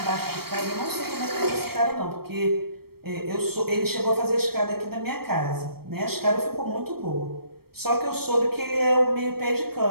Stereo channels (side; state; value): left; late; 0.95 ms